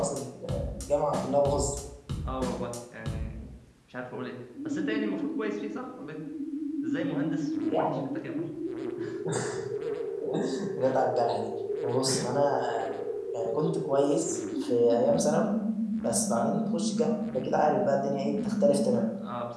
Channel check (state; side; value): identical; both; correlation 1.00